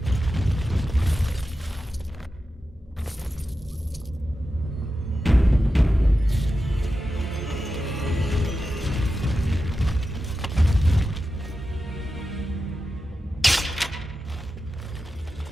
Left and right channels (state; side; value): normal; both; correlation 0.91